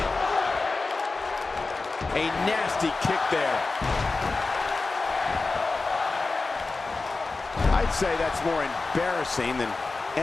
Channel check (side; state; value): right; quieter; 3.7 dB